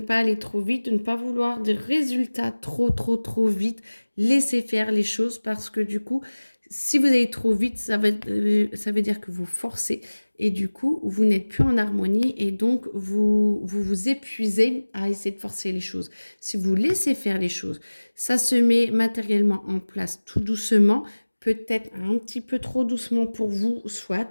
aller trop vite, de ne pas vouloir des résultats trop vite. Laissez faire les choses parce que du coup, si vous allez trop vite, ça veut dire que vous forcez et du coup, vous n'êtes plus en harmonie et donc vous épuisez à essayer de forcer les choses. Si vous laissez faire les choses, ça se met matériellement en place tout doucement, peut-être un petit peu trop doucement pour vous,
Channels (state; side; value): inverted; both; correlation -1.00